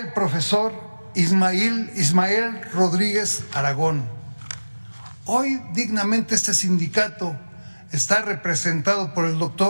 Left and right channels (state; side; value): inverted; both; correlation -1.00